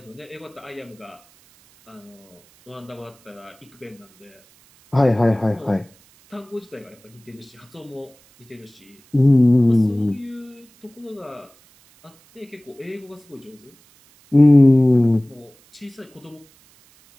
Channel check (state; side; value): noise; right; hiss, 30 dB below the sound